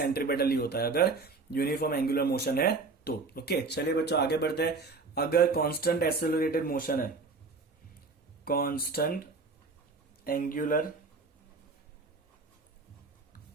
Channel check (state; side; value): quieter; left; 4.1 dB